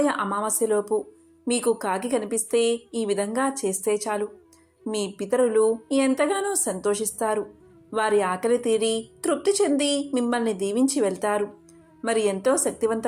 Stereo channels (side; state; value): both; identical; correlation 1.00